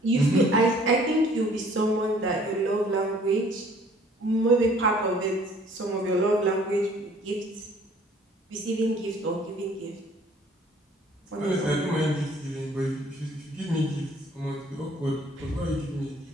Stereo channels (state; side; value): normal; both; correlation 0.56